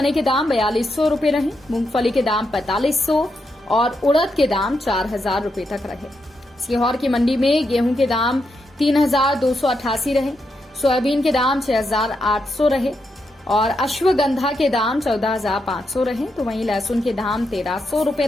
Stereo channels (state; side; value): normal; both; correlation 0.83